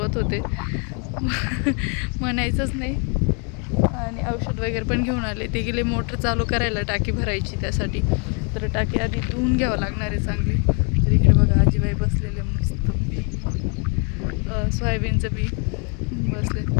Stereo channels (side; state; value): right; quieter; 37.3 dB